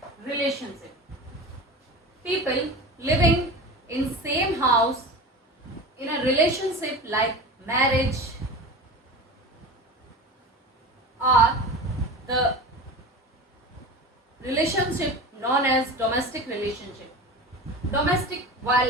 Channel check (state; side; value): normal; both; correlation 0.31